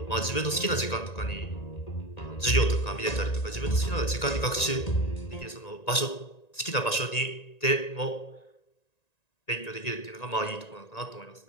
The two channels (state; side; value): late; right; 1.9 ms